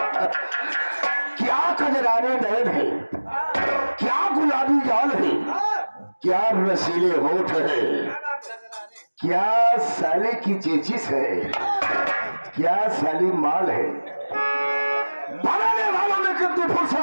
क्या कजराने नयन है, क्या गुलाबी गाल है, क्या रसीले होठ है, क्या साले की चेचिस है, क्या साली माल है। बनाने वालों ने कितनी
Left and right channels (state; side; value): inverted; both; correlation -1.00